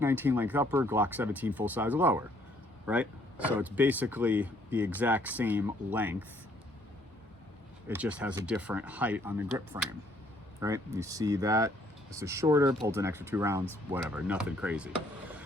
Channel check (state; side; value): normal; both; correlation 0.65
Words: 19 length upper, Glock 17 full size lower, right? So it's basically the exact same length. It just has a different height on the grip frame, right? You see that. This is shorter, holds an extra 2 rounds, whatever, nothing crazy.